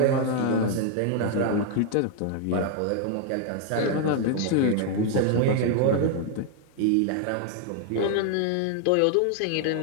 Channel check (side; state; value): both; different; correlation 0.00